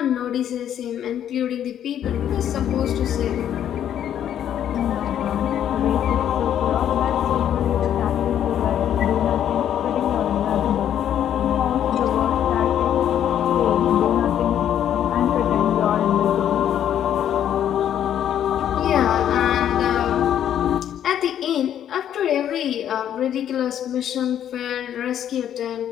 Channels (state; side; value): quieter; right; 10.2 dB